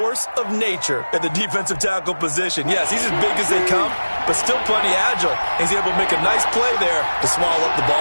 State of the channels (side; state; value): both; inverted; correlation -1.00